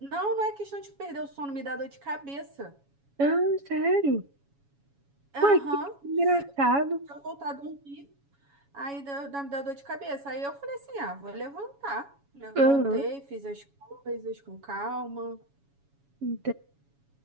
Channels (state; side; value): late; left; 7.2 ms